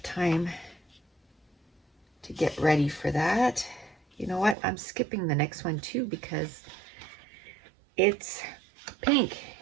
time to get ready for that. You know what? I'm skipping the next one too because it's pink.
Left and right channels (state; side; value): drops out; left; at 4.5 s